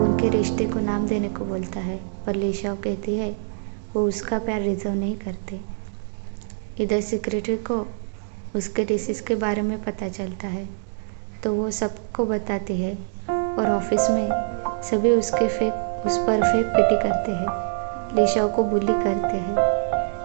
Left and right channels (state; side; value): silent; left; 62 dB below the other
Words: उनके रिश्ते को नाम देने को बोलता है और लीशाओ कहती है वो उसका प्यार रिजर्व नहीं करते। इधर सेक्रेटरी को उसके डिसीज के बारे में पता चलता है तो वो सबको बताती है और ऑफिस में सभी उस पर फेक पिटी करते हैं, लीशाओ को बुली करते हैं,